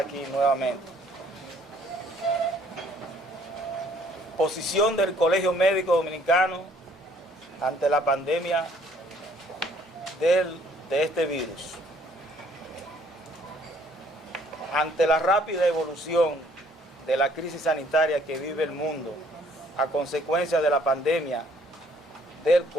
nuevamente. Posición del Colegio Médico Dominicano ante la pandemia de este virus. Ante la rápida evolución de la crisis sanitaria que vive el mundo a consecuencia de la pandemia del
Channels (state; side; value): normal; both; correlation 0.62